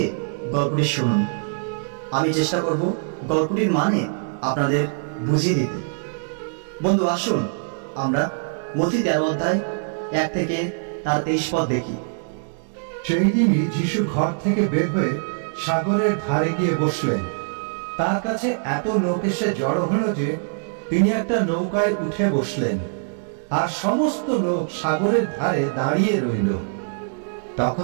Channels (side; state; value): left; silent; 63 dB below the other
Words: গল্পটি শুনুন। আমি চেষ্টা করব গল্পটির মানে আপনাদের বুঝিয়ে দিতে। বন্ধু, আসুন আমরা মথি 13 অধ্যায় 1 থেকে তার 23 পদ দেখি। সেই দিনই যিশু ঘর থেকে বের হয়ে সাগরের ধারে গিয়ে বসলেন। তার কাছে এত লোক এসে জড়ো হলো যে তিনি একটা নৌকায় উঠে বসলেন, আর সমস্ত লোক সাগরের ধারে দাঁড়িয়ে রইল। তখন